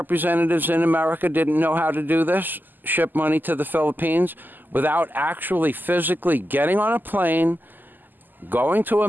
in America didn't know how to do this, ship money to the Philippines, without actually physically getting on a plane, going to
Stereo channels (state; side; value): late; left; 0.088 ms